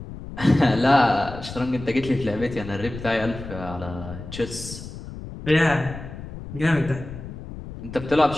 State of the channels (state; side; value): noise; left; rumble, 12 dB below the sound